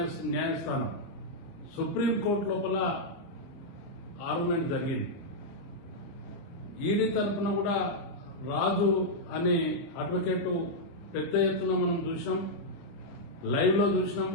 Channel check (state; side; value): late; right; 29 ms